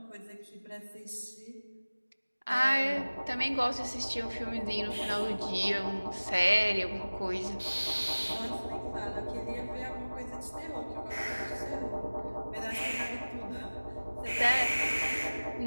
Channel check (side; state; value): both; inverted; correlation -1.00